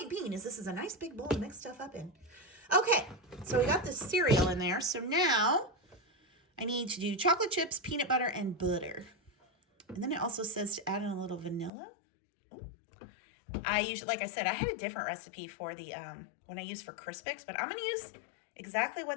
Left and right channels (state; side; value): drops out; right; at 11.7 s